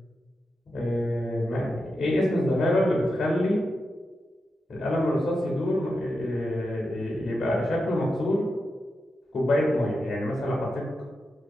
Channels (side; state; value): both; normal; correlation 0.88